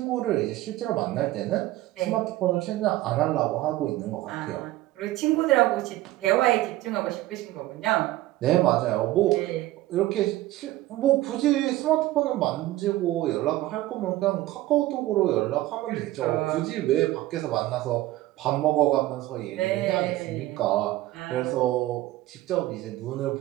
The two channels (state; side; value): quieter; left; 16.5 dB